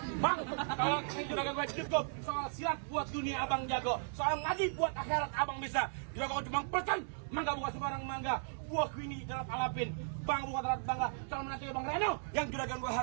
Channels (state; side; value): silent; left; digital silence